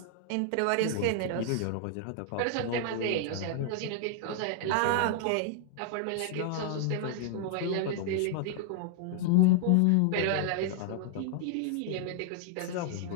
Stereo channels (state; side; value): different; both; correlation 0.00